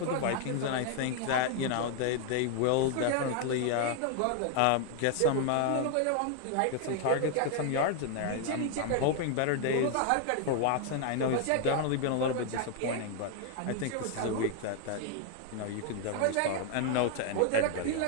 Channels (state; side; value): different; both; correlation 0.00